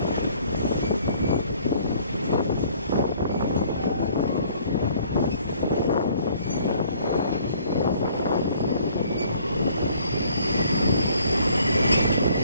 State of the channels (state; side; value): inverted; both; correlation -0.59